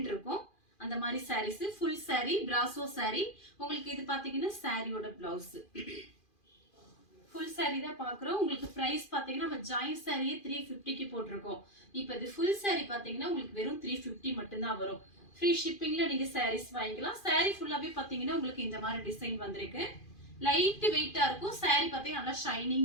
இருக்கும். அந்த மாதிரி sarees full saree brasso saree. உங்களுக்கு இது பாத்தீங்கன்னா சாரியோட பிளவுஸ். ஃபுல் saree தான் பார்க்குறோம். உங்களுக்கு பிரைஸ் பாத்தீங்கன்னா நம்ம ஜாயின் சாரியே 350க்கு போட்டிருக்கோம். இப்போ இது ஃபுல் saree பாத்தீங்கன்னா உங்களுக்கு வெறும் 350 மட்டும் தான் வரும். ஃப்ரீ ஷிப்பிங்ல நீங்க sarees வாங்கிக்கலாம். saree ஃபுல்லாவே பாத்தீங்கன்னா உங்களுக்கு இந்த மாதிரி டிசைன் வந்திருக்கு. லைட் வெயிட்டா இருக்கும். saree பாத்தீங்கன்னா நல்லா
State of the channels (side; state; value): right; late; 2.4 ms